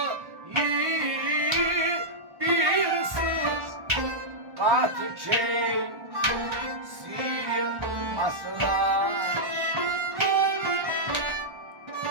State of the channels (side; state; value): left; late; 1.1 ms